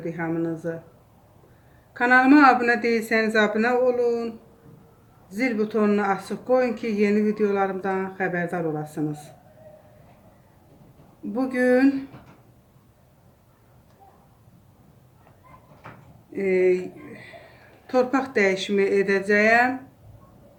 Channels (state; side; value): identical; both; correlation 1.00